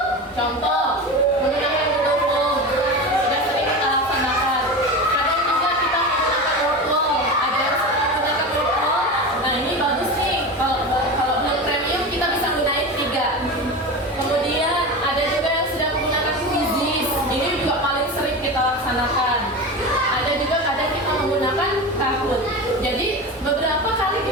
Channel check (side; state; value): both; normal; correlation 0.26